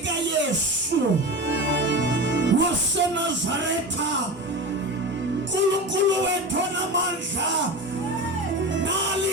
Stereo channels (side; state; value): both; normal; correlation 0.26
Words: Yesu waseNazaretha, Nkulunkulu wethu onamandla, nali